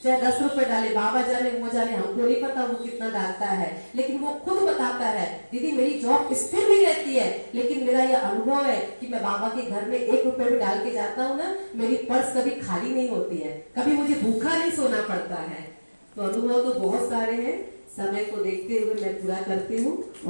चाहे 10 रुपए डाले, बाबा जाने वो जाने, हमको नहीं पता वो कितना डालता है, लेकिन वो खुद बताता है दीदी मेरी जॉब स्थिर नहीं रहती है, लेकिन मेरा ये अनुभव है कि मैं बाबा के घर में 1 रुपए भी डाल के जाता हूँ ना, मेरी पर्स कभी खाली नहीं होती है, कभी मुझे भूखा नहीं सोना पड़ता है। तो अनुभव तो बहुत सारे हैं, समय को देखते हुए मैं पूरा करती हूँ।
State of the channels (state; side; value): inverted; both; correlation -1.00